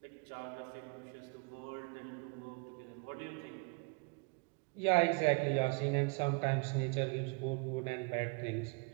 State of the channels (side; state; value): left; quieter; 32.3 dB